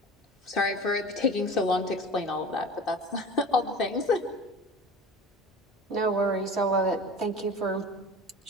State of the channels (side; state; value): both; normal; correlation 0.37